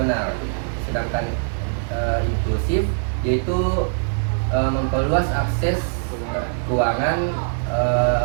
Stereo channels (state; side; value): silent; left; digital silence